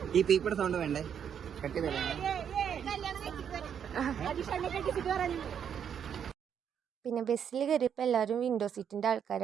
ഈ പീപ്പയുടെ സൗണ്ട് വേണ്ടേ? പിന്നെ ബസ്സിൽ കയറിയപ്പോൾ എല്ലാവരും വിൻഡോ സീറ്റിൻ്റെ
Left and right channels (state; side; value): quieter; left; 8.2 dB